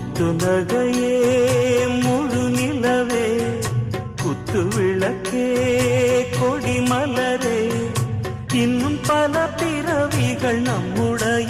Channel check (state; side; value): identical; both; correlation 1.00